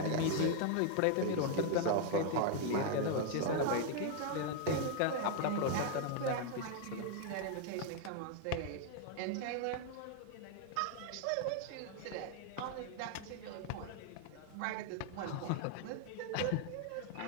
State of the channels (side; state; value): both; different; correlation 0.00